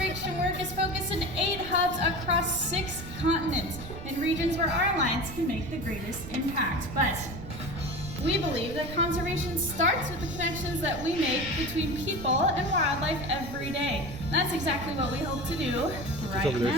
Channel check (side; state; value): right; noise; rumble, 11 dB below the sound